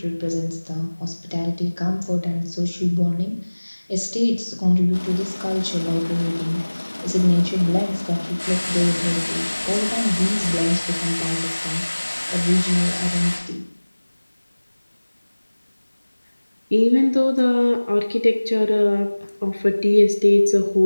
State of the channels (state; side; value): inverted; both; correlation -1.00